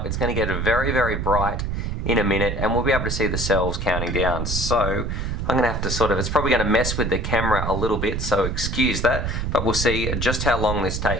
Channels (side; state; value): right; noise; rumble, 2 dB below the sound